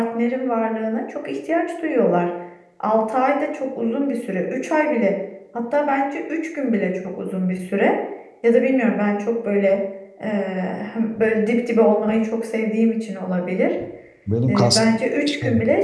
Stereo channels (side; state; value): both; identical; correlation 1.00